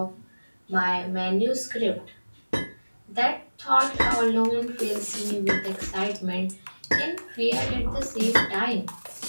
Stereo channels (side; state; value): both; inverted; correlation -1.00